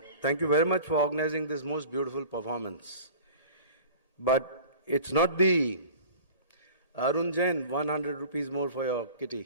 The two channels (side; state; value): both; inverted; correlation -0.42